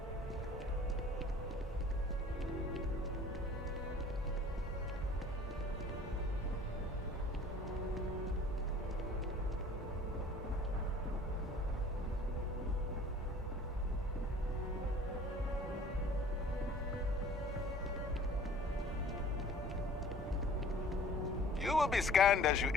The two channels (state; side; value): normal; both; correlation 0.50